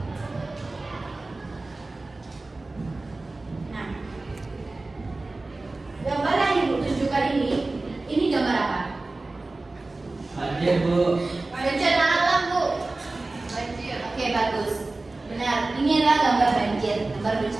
Nah, gambar yang Ibu tunjukkan ini gambar apa? Banjir, Bu. Bencana alam, Bu. Banjir. Oke, bagus. Benar. Ini adalah gambar banjir, gambar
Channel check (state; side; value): quieter; left; 3.2 dB